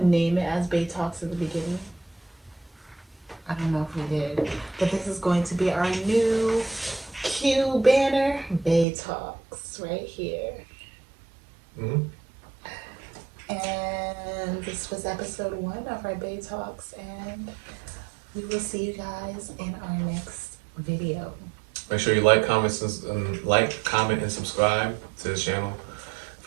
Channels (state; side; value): drops out; left; at 8.8 s